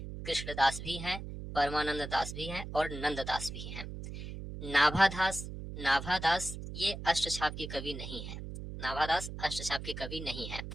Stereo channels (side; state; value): right; noise; hum, 8 dB below the sound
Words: कृष्णदास भी हैं, परमानंद दास भी हैं और नंददास भी हैं। नाभादास ये अष्टछाप के कवि नहीं है। नाभादास अष्टछाप के कवि नहीं है।